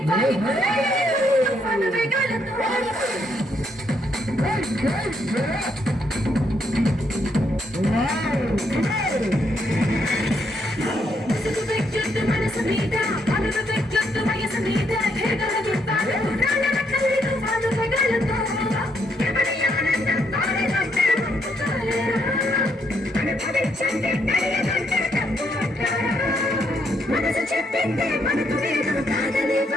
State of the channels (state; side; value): normal; both; correlation 0.74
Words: పను వేగాలతో ముసుగు వెచ్చొద్దు మనసు మీద, పనులు వెచ్చొద్దు వయసు మీద. ఎగరని పను వేగాలతో ఎవరి ఆనందం తాడేదంటే పంపుతాలేరా. అనుభవించండి తెలియదంటే తప్పు అంటారా. మనసు చెప్పిందే మనకు లేదు కాదని